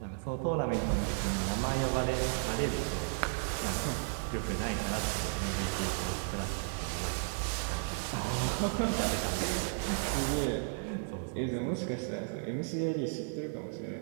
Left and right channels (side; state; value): left; silent; digital silence